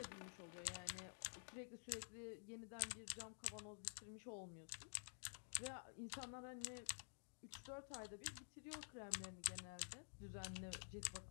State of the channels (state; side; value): silent; right; digital silence